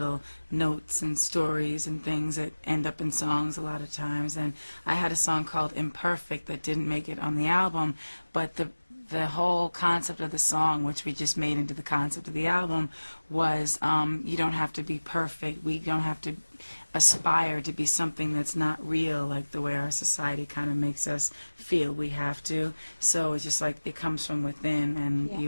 notes and stories and things that end up in songs a lot of times. And I had a song called Imperfect that didn't make it on the album, but the whole concept of the song, which we just made into the concept of the album, was you don't have to be perfect. We don't have to aspire to be something that's not real, like the way our society kind of makes us feel we have to. So it's just like it comes from within, and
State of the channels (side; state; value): both; inverted; correlation -1.00